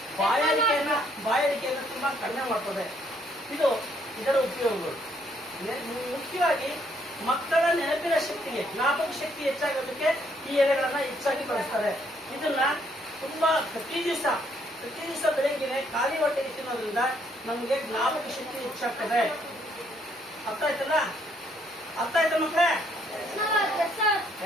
ಬಾಯಾರಿಕೆಯನ್ನು ತುಂಬಾ ಕಡಿಮೆ ಮಾಡ್ತದೆ. ಇದರ ಉಪಯೋಗಗಳು. ಮುಖ್ಯವಾಗಿ ಮಕ್ಕಳ ನೆನಪಿನ ಶಕ್ತಿಗೆ, ಜ್ಞಾಪಕ ಶಕ್ತಿ ಹೆಚ್ಚಾಗೋದಕ್ಕೆ ಈ ಎಲೆಗಳನ್ನ ಹೆಚ್ಚಾಗಿ ಬಳಸ್ತಾರೆ. ಇದನ್ನ ತುಂಬಾ ಪ್ರತಿ ದಿವಸ ಬೆಳಗ್ಗೆ ಖಾಲಿ ಹೊಟ್ಟೆಗೆ ತಿನ್ನೋದ್ರಿಂದ ನಮಗೆ ಜ್ಞಾಪಕ ಶಕ್ತಿ ಹೆಚ್ಚಾಗ್ತದೆ. ಅರ್ಥ ಆಯ್ತಾ ಮಕ್ಕಳೇ?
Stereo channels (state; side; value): normal; both; correlation 0.69